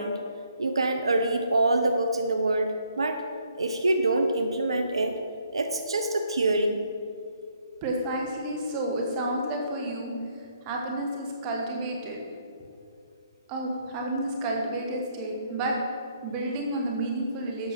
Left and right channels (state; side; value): inverted; both; correlation -0.69